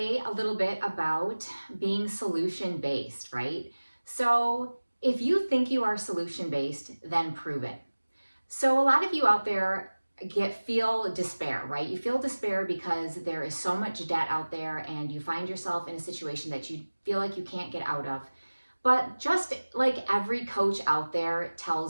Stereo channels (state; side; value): inverted; both; correlation -1.00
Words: a little bit about being solution-based, right? So if you think you are solution-based, then prove it. So a lot of you out there feel despair, right? You feel despair because there is so much debt out there and you find yourself in a situation that you feel like you can't get out of. But just like every coach out there